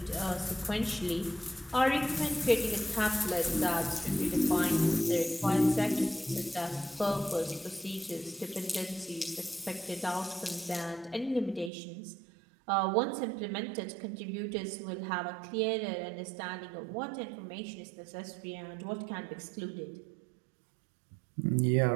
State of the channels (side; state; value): left; drops out; at 11.7 s